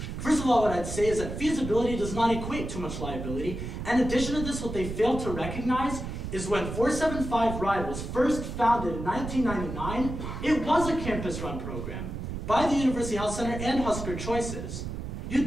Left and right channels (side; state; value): right; noise; rumble, 6 dB below the sound